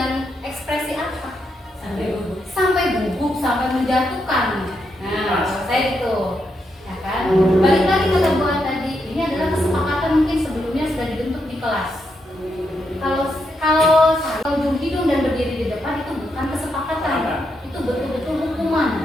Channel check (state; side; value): normal; both; correlation 0.81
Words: ekspresi apa? Sampai gugup, sampai menjatuhkan. Nah, saya itu. Ya kan? Balik lagi ke buat tadi, ini adalah kesepakatan mungkin sebelumnya sudah dibentuk di kelas. Kalau ujung hidung dan berdiri di depan itu bukan kesepakatan, itu betul-betul hukuman.